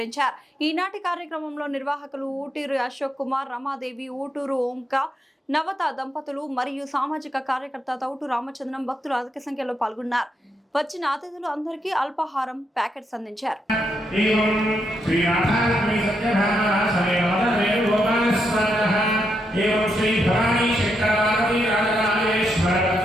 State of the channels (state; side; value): normal; both; correlation 0.81